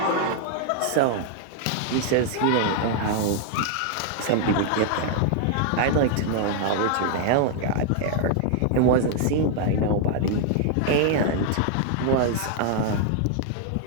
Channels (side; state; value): both; different; correlation 0.00